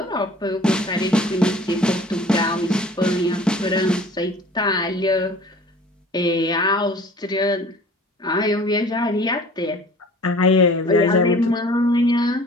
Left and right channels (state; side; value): normal; both; correlation 0.47